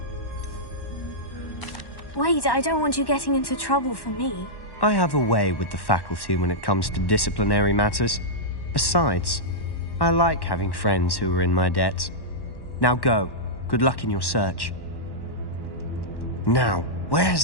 Wait, I don't want you getting into trouble for me. I have a way with the faculty when it comes to disciplinary matters. Besides, I like having friends who are in my debt. Now go. Good luck in your search. Now, where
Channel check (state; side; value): late; right; 1.1 ms